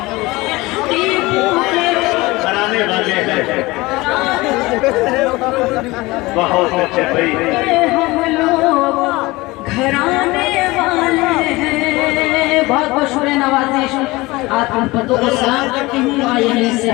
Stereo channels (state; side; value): quieter; right; 21.4 dB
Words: बहुत अच्छे भाई, हम लोग घराने वाले हैं। बहुत बहुत शुक्रिया नवाजिश, आप हम पतों को सलाम करती हूँ और यहीं से